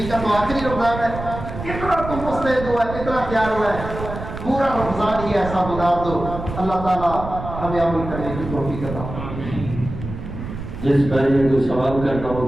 کا تو آخری رمضان ہے، اتنا تم مستعد ہوا ہے، اتنا تیار ہوا ہے، پورا رمضان ہی ایسا گزار دو۔ اللہ تعالیٰ ہمیں عمل کرنے کی توفیق عطا فرمائے۔ جس بھائی نے کوئی سوال کرنا ہو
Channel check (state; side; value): noise; right; rumble, 9 dB below the sound